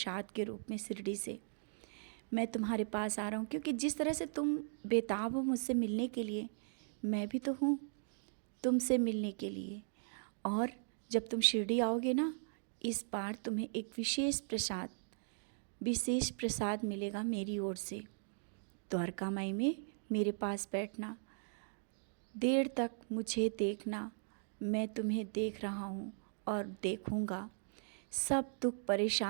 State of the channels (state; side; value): silent; left; digital silence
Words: के रूप में शिरडी से। मैं तुम्हारे पास आ रहा हूँ क्योंकि जिस तरह से तुम बेताब हो मुझसे मिलने के लिए, मैं भी तो हूँ तुमसे मिलने के लिए। और जब तुम शिरडी आओगे ना, इस बार तुम्हें एक विशेष प्रसाद मिलेगा मेरी ओर से। द्वारका माई में मेरे पास बैठना, देर तक मुझे देखना। मैं तुम्हें देख रहा हूँ और देखूँगा। सब दुख